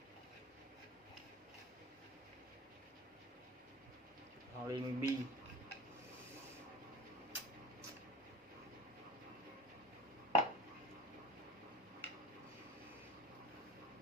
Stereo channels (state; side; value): normal; both; correlation 0.37